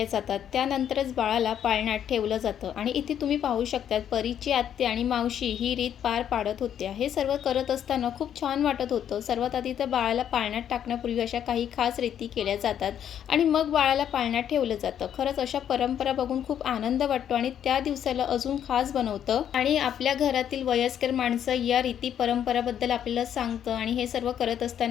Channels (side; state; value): right; quieter; 9.6 dB